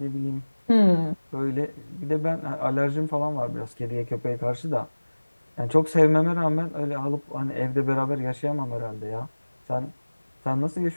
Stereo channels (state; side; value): inverted; both; correlation -1.00